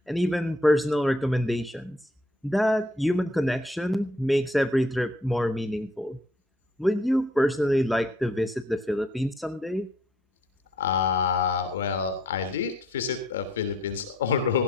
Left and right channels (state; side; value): normal; both; correlation 0.65